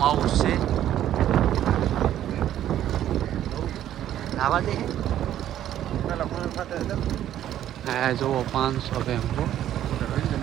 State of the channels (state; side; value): quieter; left; 11.7 dB